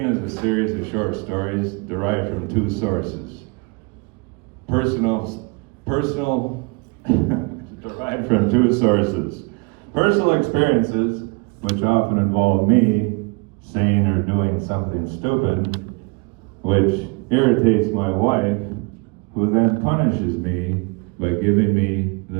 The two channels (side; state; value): left; quieter; 31.5 dB